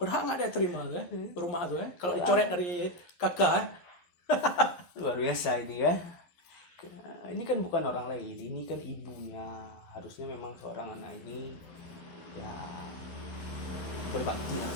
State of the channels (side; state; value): right; late; 11 ms